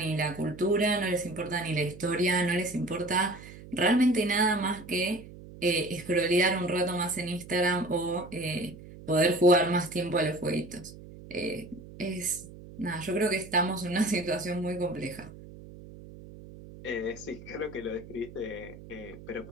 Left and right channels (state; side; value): noise; right; hum, 17 dB below the sound